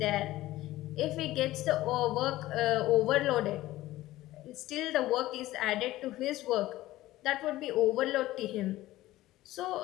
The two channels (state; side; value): quieter; right; 16.3 dB